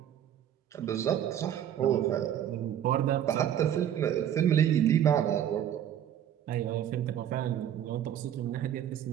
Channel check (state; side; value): quieter; left; 10.3 dB